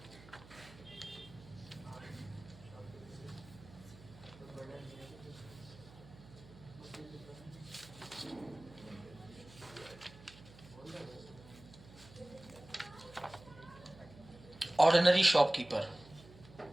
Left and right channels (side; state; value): right; noise; hum, 20 dB below the sound